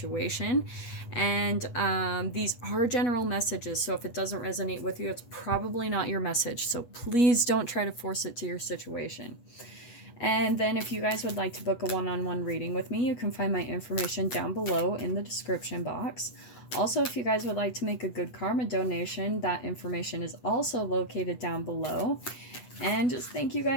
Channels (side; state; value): right; late; 8.2 ms